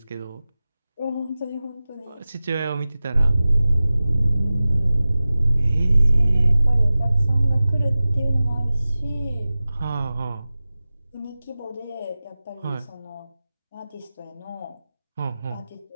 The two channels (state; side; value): inverted; both; correlation -0.96